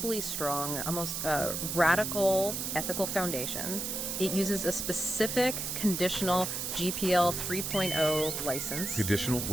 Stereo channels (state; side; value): noise; right; hiss, 3 dB below the sound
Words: strong, almost radical ethical foundation. It uses a specific conditional GPL 3.0 license. Conditional?